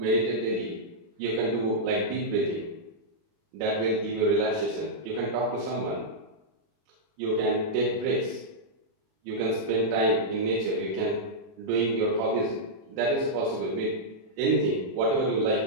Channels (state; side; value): late; left; 37 ms